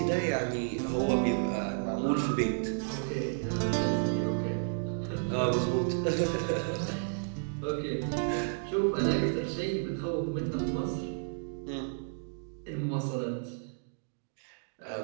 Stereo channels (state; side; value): silent; left; digital silence